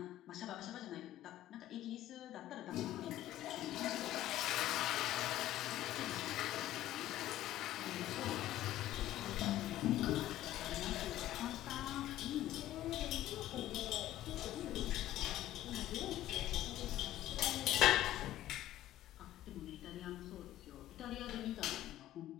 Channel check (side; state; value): right; quieter; 13.9 dB